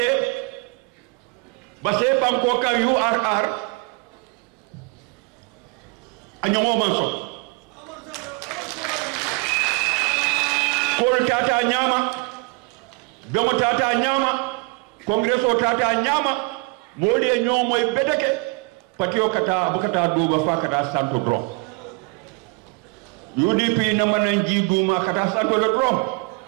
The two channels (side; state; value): left; quieter; 29.2 dB